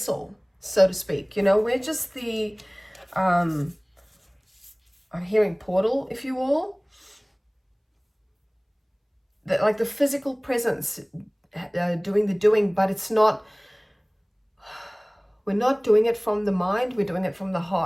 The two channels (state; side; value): identical; both; correlation 1.00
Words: so to speak. You know, we're just the, I'm hearing portal, if you will. Like the physical presence doing the doing, but it's not, we're not doing it from the mind, we're doing it from the